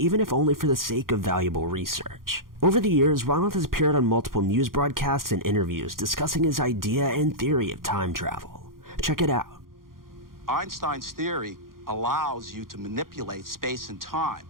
if only for the sake of valuable research. Over the years, Ronald has appeared on multiple news broadcasts and interviews discussing his idea and theory of time travel. Check it out. Einstein's theory allows you to manipulate space and time.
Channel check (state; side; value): late; left; 0.91 ms